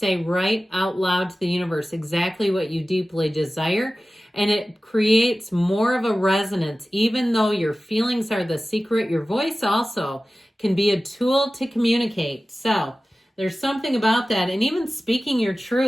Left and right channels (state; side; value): normal; both; correlation 0.96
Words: right out loud to the universe exactly what you deeply desire, and it creates more of a resonance. Even though your feelings are the secret, your voice also can be a tool to communicate. So there's something about that. And even speaking your